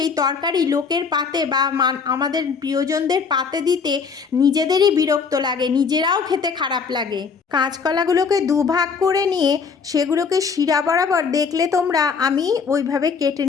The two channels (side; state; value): right; quieter; 5.7 dB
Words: তরকারি লোকের পাতে বা আমাদের প্রিয়জনদের পাতে দিতে নিজেদেরই বিরক্ত লাগে, নিজেরাও খেতে খারাপ লাগে। কাঁচকলাগুলোকে দুভাগ করে নিয়ে সেগুলোকে শিরা বরাবর দেখলে তোমরা আমি ওইভাবে কেটে